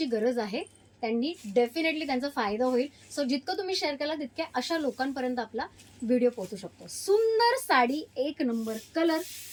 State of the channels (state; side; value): identical; both; correlation 1.00